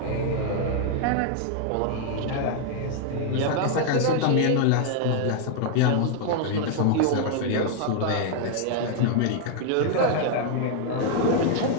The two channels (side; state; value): both; different; correlation 0.00